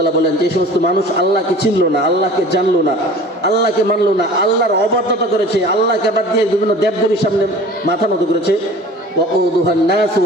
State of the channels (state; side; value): normal; both; correlation 0.43